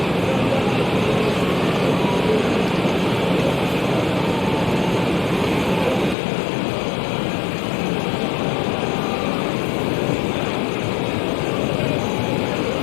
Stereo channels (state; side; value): drops out; right; at 6.2 s